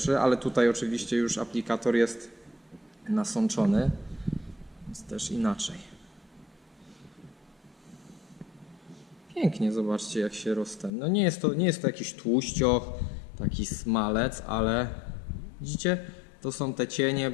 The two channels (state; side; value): drops out; right; at 10.9 s